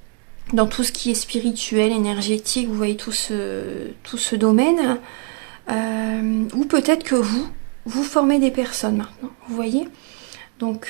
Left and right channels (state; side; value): quieter; left; 36.5 dB